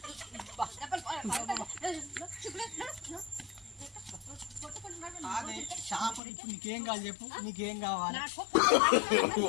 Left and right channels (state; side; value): drops out; right; at 6.2 s